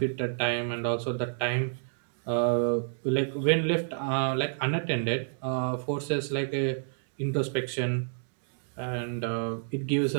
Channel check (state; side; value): silent; left; digital silence